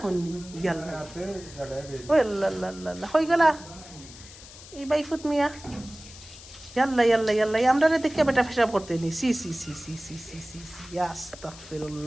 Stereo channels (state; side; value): noise; left; hiss, 17 dB below the sound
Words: গেল ও আল্লাহ হয়ে গেলা এই বাইফুত মিয়া ইয়াল্লা ইয়াল্লা ইয়াল্লা আমরা দেখে বেটা ফেসাব করতে নি সি সি সি সি সি সি সি সি